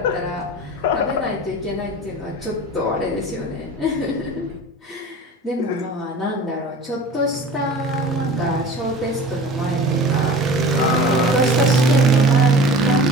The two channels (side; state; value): both; normal; correlation 0.39